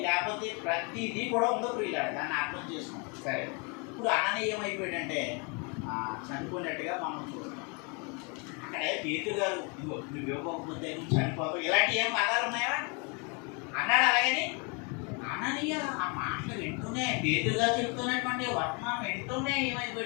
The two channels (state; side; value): quieter; right; 33.2 dB